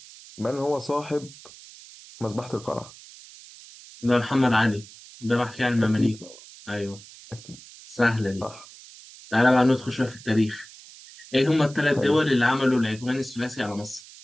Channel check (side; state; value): right; noise; hiss, 19 dB below the sound